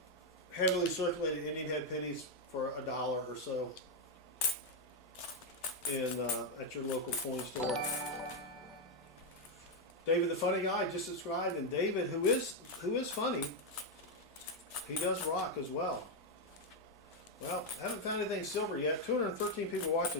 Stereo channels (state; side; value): normal; both; correlation 0.02